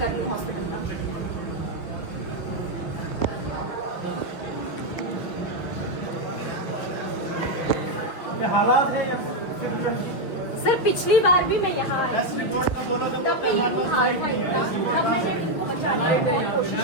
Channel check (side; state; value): right; late; 6.0 ms